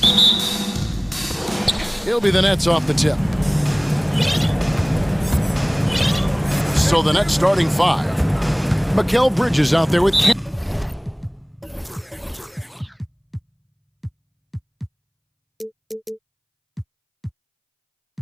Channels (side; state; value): both; identical; correlation 1.00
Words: It'll be the Nets off the tip. So the Nets starting five. Mikal Bridges out there with